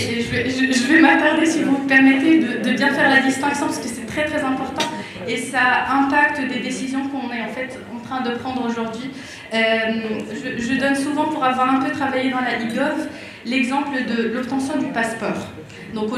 vais m'attarder, si vous me permettez, de bien faire la distinction, parce que c'est très très important et ça impacte des décisions qu'on est en fait en train de prendre aujourd'hui. Je donne souvent, pour avoir un peu travaillé dans la e-gov, l'exemple de l'obtention du passeport. Donc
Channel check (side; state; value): both; identical; correlation 1.00